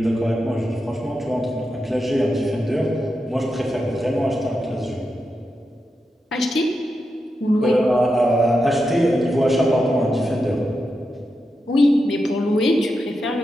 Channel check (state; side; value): normal; both; correlation 0.88